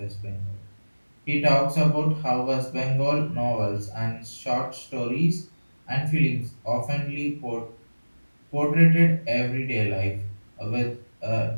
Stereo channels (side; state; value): both; inverted; correlation -1.00